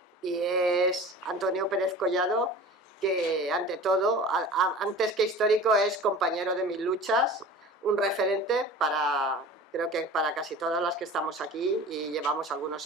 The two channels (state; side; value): normal; both; correlation 0.39